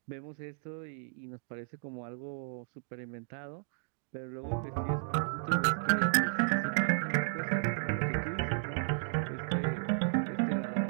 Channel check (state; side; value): silent; left; digital silence